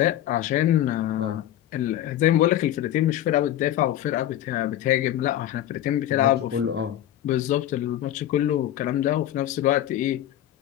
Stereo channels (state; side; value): quieter; right; 12.3 dB